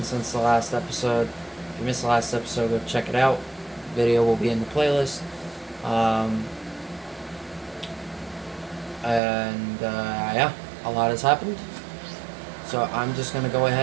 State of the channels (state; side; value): drops out; left; at 9.2 s